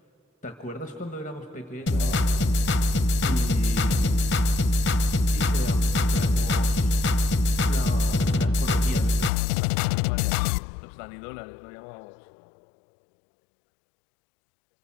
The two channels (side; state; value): right; drops out; at 9.3 s